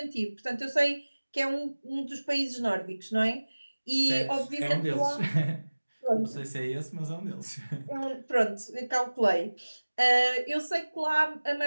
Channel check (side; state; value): both; inverted; correlation -1.00